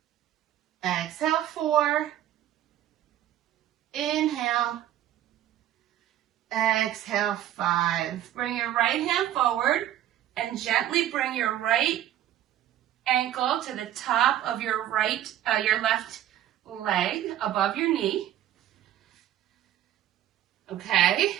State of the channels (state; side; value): quieter; left; 12.1 dB